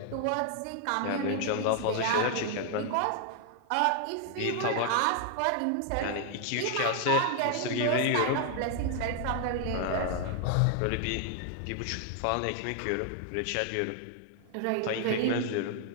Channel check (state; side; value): different; both; correlation 0.00